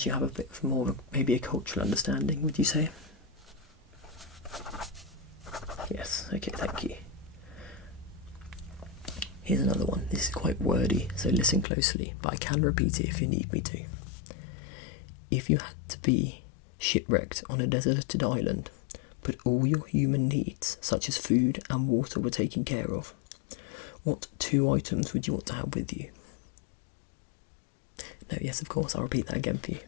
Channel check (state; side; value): drops out; right; at 11.7 s